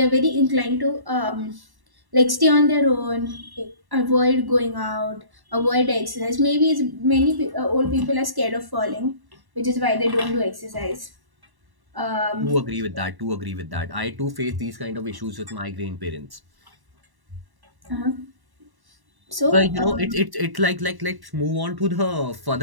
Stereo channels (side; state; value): left; late; 1.1 ms